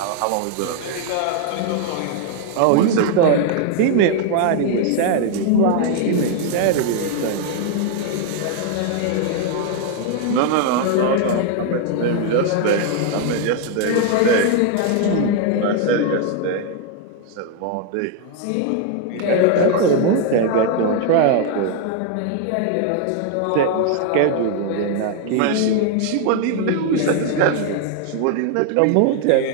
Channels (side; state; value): both; different; correlation 0.00